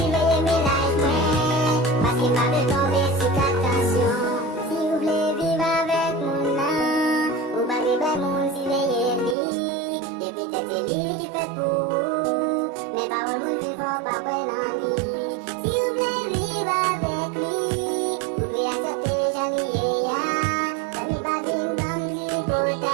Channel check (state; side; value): drops out; left; at 9.3 s